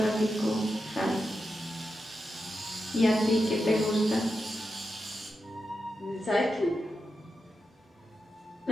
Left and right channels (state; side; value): normal; both; correlation 0.88